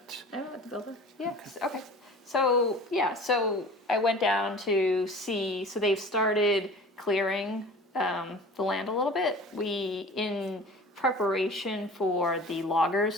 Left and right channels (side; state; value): both; normal; correlation 0.41